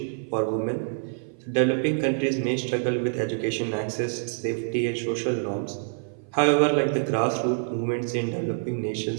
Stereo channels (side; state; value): left; silent; 56 dB below the other